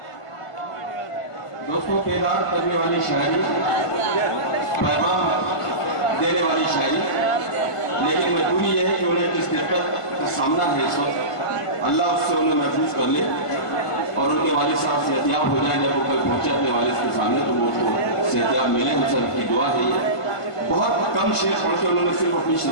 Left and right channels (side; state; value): right; late; 1.5 ms